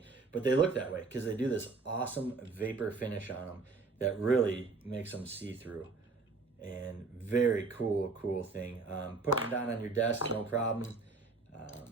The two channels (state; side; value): quieter; left; 4.0 dB